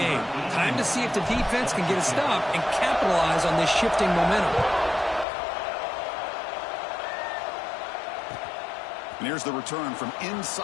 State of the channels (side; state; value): right; drops out; at 5.2 s